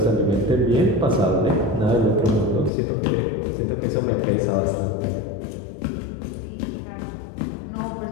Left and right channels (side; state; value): right; drops out; at 2.7 s